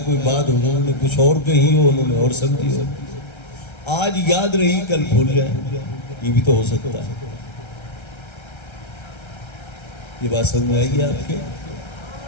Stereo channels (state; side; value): late; right; 1.3 ms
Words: کوئی بات حضور نے کچھ اور کہی ہو، انہوں نے اور سمجھی ہو، آج یاد رہی کل بھول جائے، یہ بھی تو ہو سکتا ہے. یہ بات سمجھ آئی گی آپ کے؟